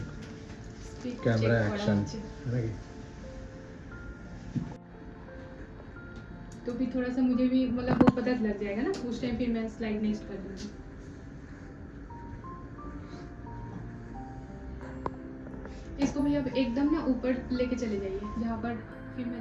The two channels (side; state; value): both; identical; correlation 1.00